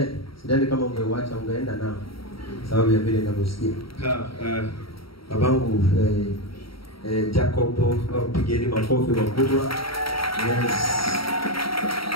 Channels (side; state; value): right; late; 0.75 ms